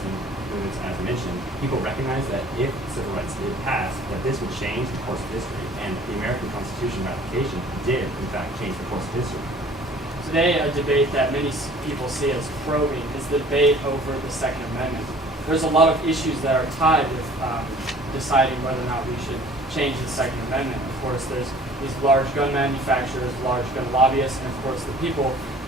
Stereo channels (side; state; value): both; normal; correlation 0.50